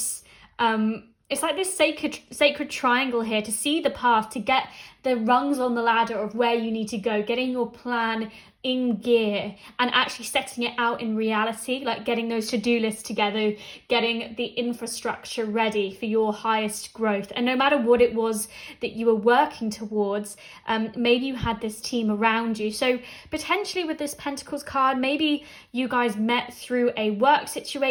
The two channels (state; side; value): identical; both; correlation 1.00